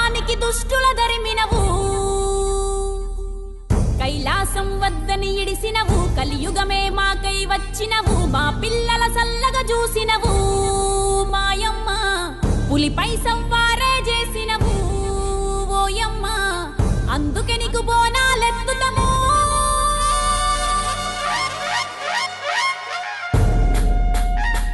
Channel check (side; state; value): both; identical; correlation 1.00